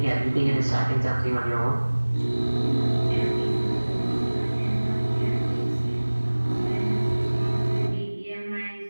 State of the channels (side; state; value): both; inverted; correlation -1.00